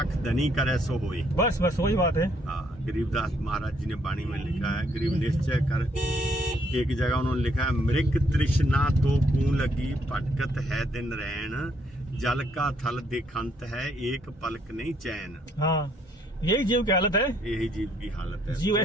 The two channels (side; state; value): both; normal; correlation 0.70